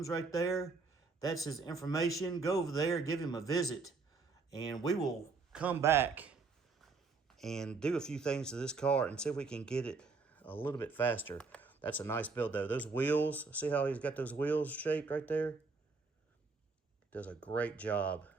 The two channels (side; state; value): left; quieter; 4.3 dB